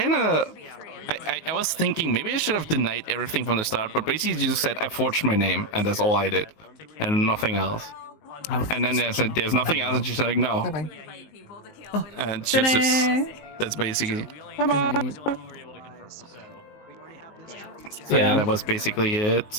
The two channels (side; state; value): right; late; 19 ms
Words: of, I was thinking maybe I should have denied everything from the start, but basically just said I forged my name, and that's all I did, and nothing else. And then there's nothing else, and she's like, no. And she's just, that's basically. So Yeah. that was basically